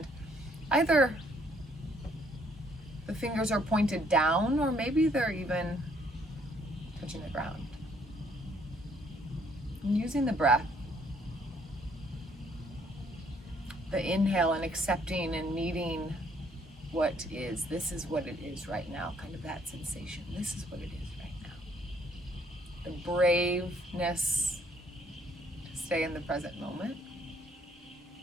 either the fingers are pointed down or maybe they're even touching the ground. And using the breath, the inhale and accepting and meeting what is. This is what it is right now, kind of that sensation. This is what it is right now. The braveness to stay in the present moment.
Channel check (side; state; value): both; normal; correlation 0.65